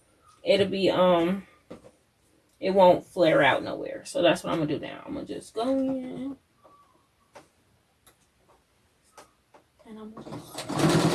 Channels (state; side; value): identical; both; correlation 1.00